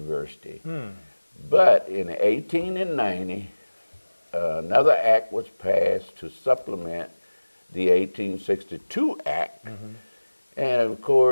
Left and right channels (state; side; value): inverted; both; correlation -1.00